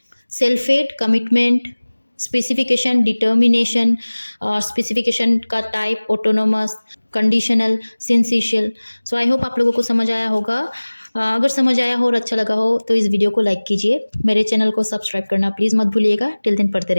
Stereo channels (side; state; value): both; inverted; correlation -1.00